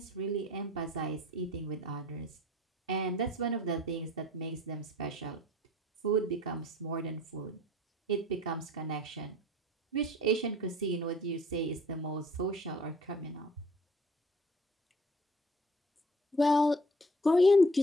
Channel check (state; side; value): normal; both; correlation 0.51